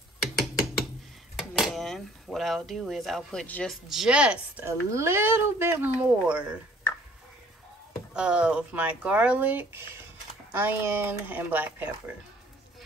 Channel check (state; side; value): normal; both; correlation 0.56